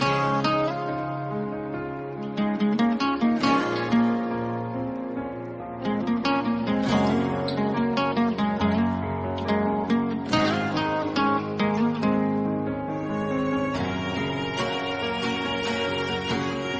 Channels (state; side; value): identical; both; correlation 1.00